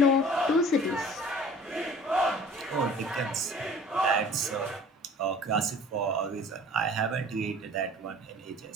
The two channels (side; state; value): both; normal; correlation 0.47